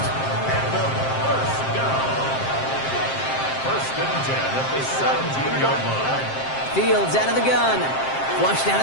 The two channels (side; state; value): right; late; 7.6 ms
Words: First and 10 at the 17-yard line. Fields out of the gun. Flushed out